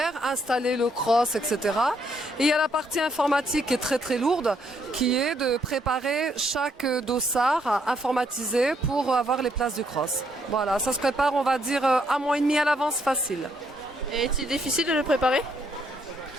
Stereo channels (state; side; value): normal; both; correlation 0.72